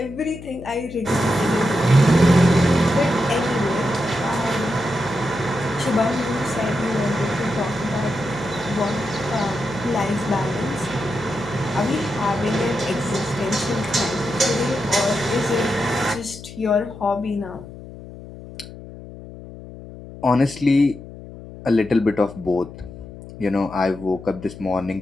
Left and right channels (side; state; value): left; noise; hum, 15 dB below the sound